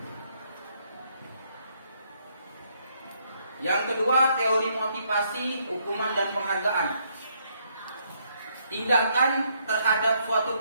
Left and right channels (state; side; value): inverted; both; correlation -0.72